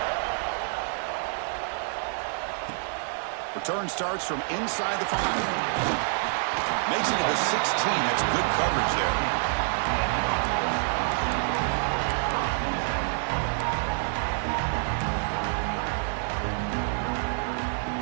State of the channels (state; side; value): silent; left; 60 dB below the other